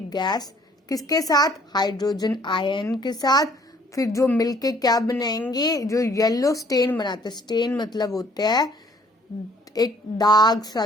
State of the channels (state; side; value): normal; both; correlation 0.60